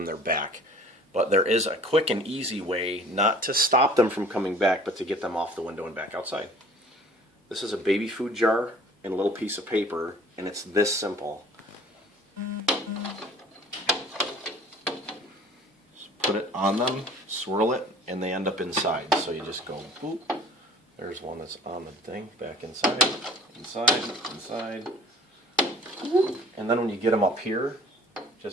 they're back. But there is a quick and easy way not to stop them from coming back, but to get them off the window and back outside. This is a baby food jar and a little piece of paper, and it's this simple. Just put it on them, swirl it, and they end up inside. So you just go boop. There's one that's on the thing, back inside, inside, inside. And then when you get them up here,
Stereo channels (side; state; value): both; normal; correlation 0.49